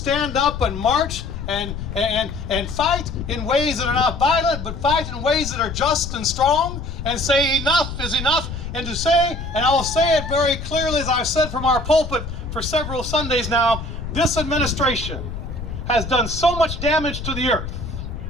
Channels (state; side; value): noise; left; rumble, 7 dB below the sound